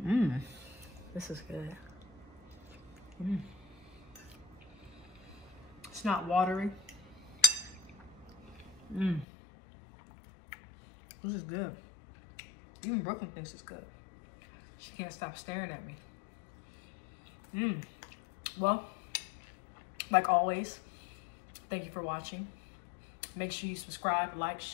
This is good. It's not watery. This is good. Even Brooklyn thinks it's good. She can't stop staring at me. Well, like always, thank you for watching. Make sure you subscribe, like,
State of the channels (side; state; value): right; drops out; at 9.2 s